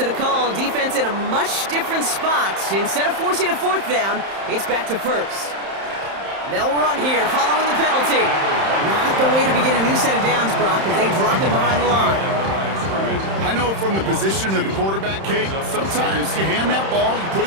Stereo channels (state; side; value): late; left; 31 ms